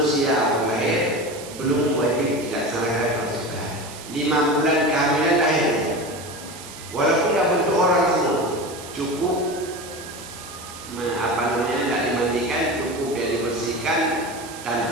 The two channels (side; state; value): right; noise; hiss, 14 dB below the sound